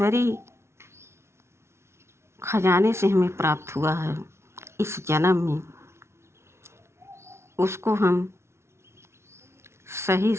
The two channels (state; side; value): late; left; 0.13 ms